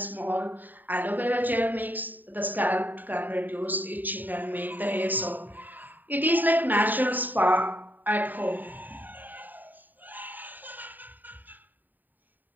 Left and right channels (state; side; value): late; left; 0.088 ms